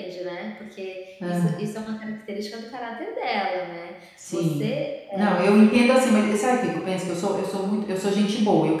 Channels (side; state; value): both; identical; correlation 1.00